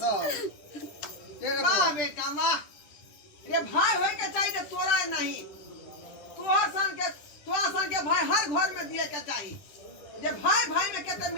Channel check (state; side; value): late; right; 10 ms